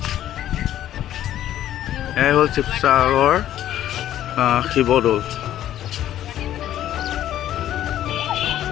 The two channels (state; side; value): quieter; right; 12.1 dB